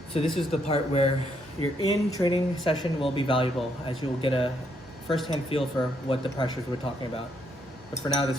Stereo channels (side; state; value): both; normal; correlation 0.74